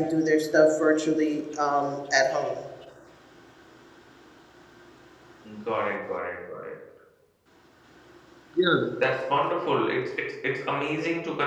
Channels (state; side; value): identical; both; correlation 1.00